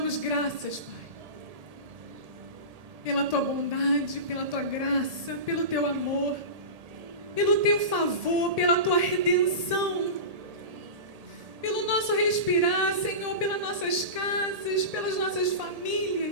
graças, Pai, pela Tua bondade, pela Tua graça, pelo Teu amor, pelo Teu favor, pela Tua redenção, pelo nosso respirar, Senhor, pelas nossas casas, pelas nossas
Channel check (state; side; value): late; left; 1.8 ms